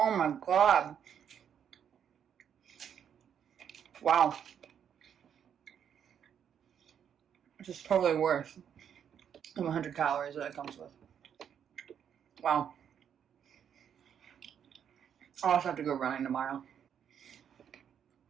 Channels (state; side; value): quieter; left; 8.5 dB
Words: my god. Wow. This is totally worth the 100 calories that it comes with. Wow. I'll also have to go running tomorrow.